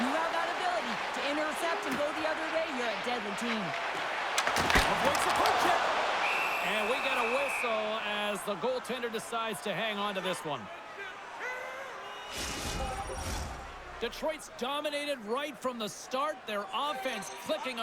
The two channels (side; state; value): both; identical; correlation 1.00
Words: you have that ability to intercept and go the other way, you're a deadly team. Avoids the poke check. And we get a whistle as the goaltender decides to hang on to this one. Detroit's dominated right from the start. Their offense clicking